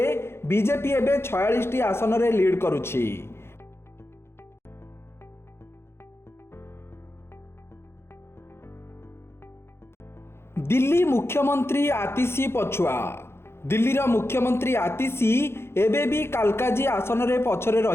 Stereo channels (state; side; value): late; right; 0.12 ms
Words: बीजेपी एबे 46 टी आसन रे लीड करुछि। दिल्ली मुख्यमंत्री आतिशी पछुआ। दिल्लीर मुख्यमंत्री आतिशी एबे भी कालकाजी आसन रे पछरे